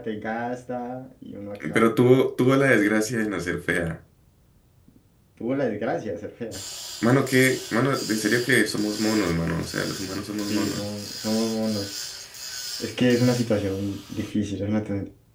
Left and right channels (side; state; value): both; identical; correlation 1.00